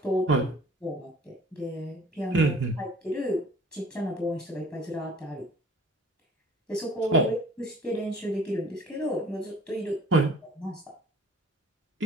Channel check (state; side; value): normal; both; correlation 0.50